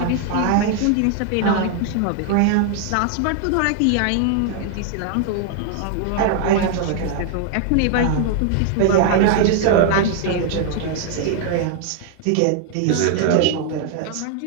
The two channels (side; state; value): both; different; correlation 0.00